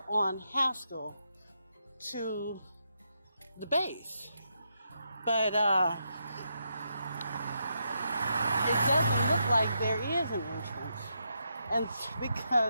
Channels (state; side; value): inverted; both; correlation -0.82